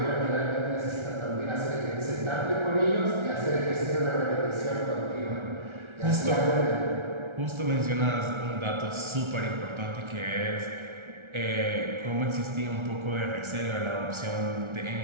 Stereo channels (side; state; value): left; late; 1.3 ms